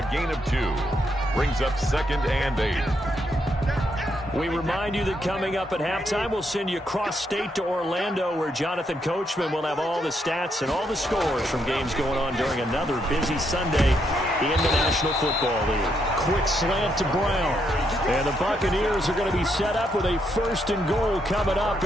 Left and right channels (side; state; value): both; normal; correlation 0.77